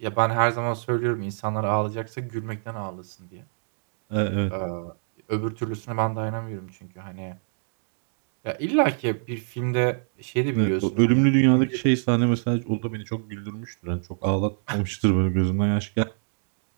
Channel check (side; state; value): left; silent; digital silence